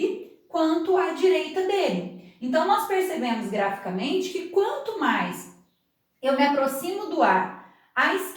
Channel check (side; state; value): both; identical; correlation 1.00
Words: quanto à direita dele. Então, nós percebemos graficamente que quanto mais eu me aproximo do A à